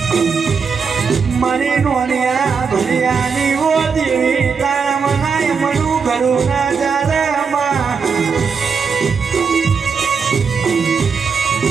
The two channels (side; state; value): left; quieter; 5.7 dB